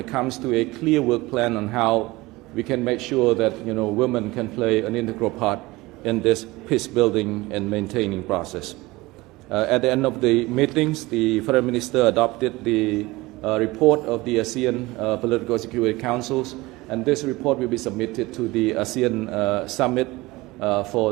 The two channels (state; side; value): quieter; left; 20.9 dB